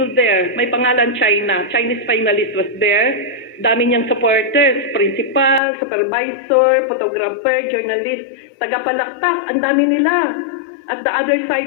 there. May pangalan China. Chinese finalist was there. Dami niyang supporters, principal, supervisor, photographer, journalist, tagapalakpak, ang dami nila. At the other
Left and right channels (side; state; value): right; drops out; at 5.6 s